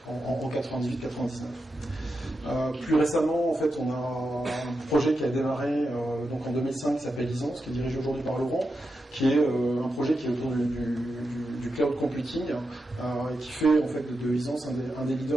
en 98-99. Plus récemment, en fait, on a un projet qui a démarré donc en 2005 qui s'appelle Isance, qui est dirigé aujourd'hui par Laurent, qui est un projet qui est autour du cloud computing, et qui fait en fait de Isance un des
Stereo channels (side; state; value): both; normal; correlation 0.88